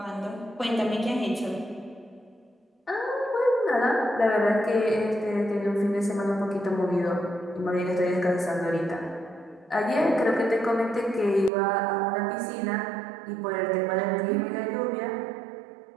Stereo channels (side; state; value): left; drops out; at 11.5 s